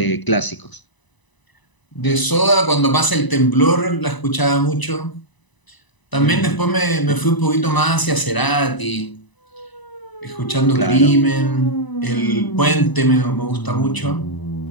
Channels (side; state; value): right; late; 1.0 ms